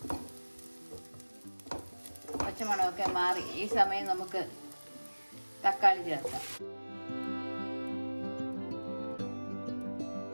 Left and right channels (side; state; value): both; inverted; correlation -1.00